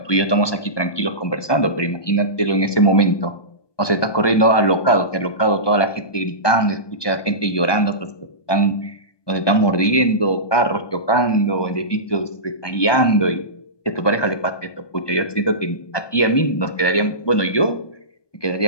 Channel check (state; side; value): late; right; 1.2 ms